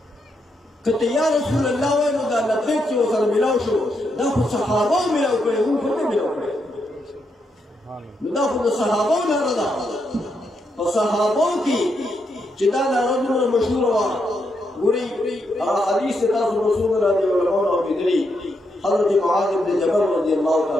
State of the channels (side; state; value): both; normal; correlation 0.81